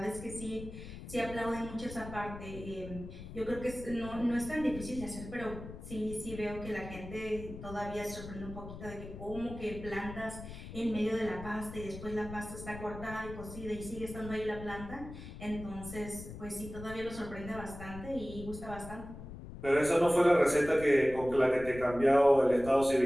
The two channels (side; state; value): left; noise; rumble, 12 dB below the sound